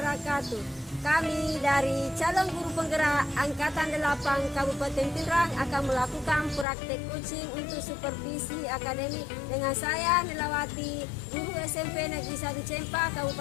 Kami dari calon guru penggerak Angkatan 8 Kabupaten Pindrang akan melakukan praktek coaching untuk supervisi akademik dengan saya Nilawati, guru SMP Negeri 1 Cempa,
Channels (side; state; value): right; drops out; at 6.7 s